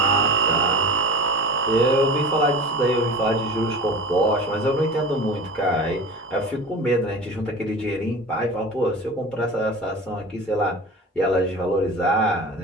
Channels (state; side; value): normal; both; correlation 0.35